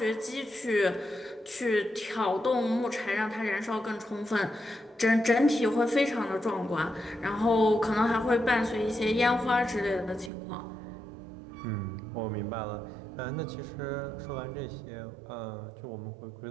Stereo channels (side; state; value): left; drops out; at 10.3 s